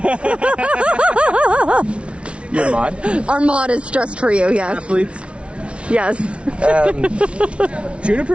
Your mod? Our mod is stressed for you, yes. Athletes. Yes.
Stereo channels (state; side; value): late; left; 0.060 ms